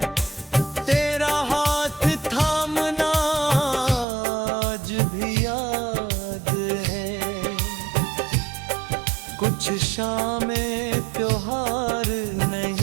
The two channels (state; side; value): drops out; left; at 4.0 s